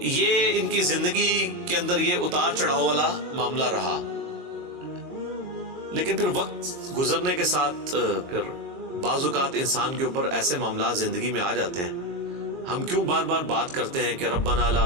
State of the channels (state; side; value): late; left; 22 ms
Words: یہ ان کی زندگی کے اندر یہ اتار چڑھاؤ والا معاملہ رہا. لیکن پھر وقت گزرنے کے ساتھ پھر بعض اوقات انسان کے اوپر ایسے معاملات زندگی میں آ جاتے ہیں. ہم کیوں بار بار بات کرتے ہیں کہ ربنا لا